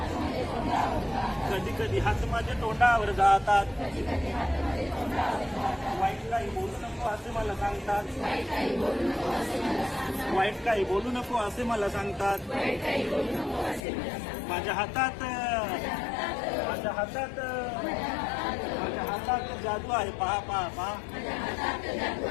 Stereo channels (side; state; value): right; drops out; at 13.8 s